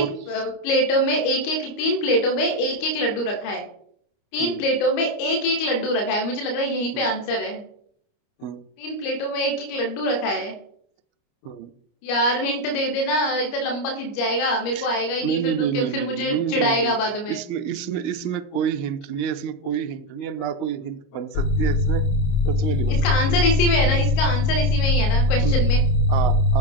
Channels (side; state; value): right; late; 29 ms